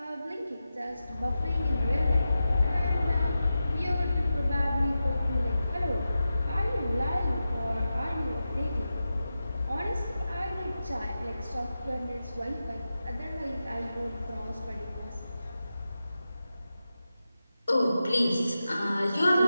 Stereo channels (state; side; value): inverted; both; correlation -0.92